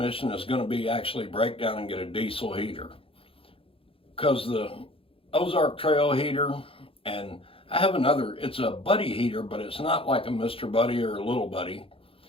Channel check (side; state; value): right; late; 0.27 ms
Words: is going to be actually break down and get a diesel heater. Because the Ozark Trail heater, and I have another, it's a Buddy heater, but it's not like a Mr. Buddy or a Little Buddy.